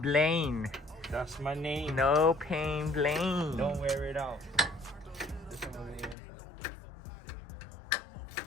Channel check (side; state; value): right; drops out; at 6.2 s